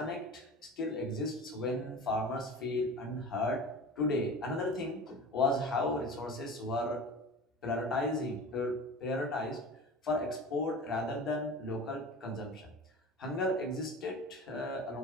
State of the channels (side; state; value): both; normal; correlation 0.35